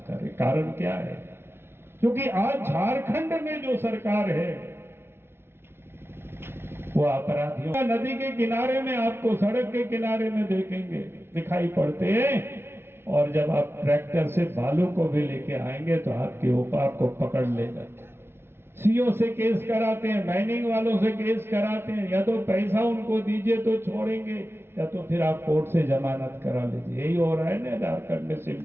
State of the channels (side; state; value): left; late; 0.12 ms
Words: कर रहे। कारण क्या है? क्योंकि आज झारखंड में जो सरकार है वो अपराधियों नदी के किनारे में आपको सड़क के किनारे में देखेंगे दिखाई पड़ते हैं, और जब आप ट्रैक्टर से बालू को भी लेके आएंगे तो आपके ऊपर आपको पकड़ लेगा। सीओ से केस कराते हैं, माइनिंग वालों से केस कराते हैं, या तो पैसा उनको दीजिए तो छोड़ेंगे, या तो फिर आप कोर्ट से जमानत करा लीजिए। यही हो रहा है ना झारखंड में,